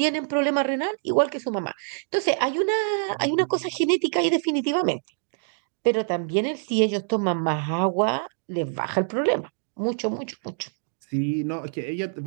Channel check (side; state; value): left; silent; digital silence